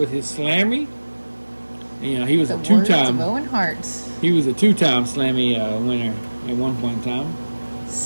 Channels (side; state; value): both; inverted; correlation -1.00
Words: his Slammy. He was a two-time. Owen Hart's. He was a two-time Slammy winner at one point in time.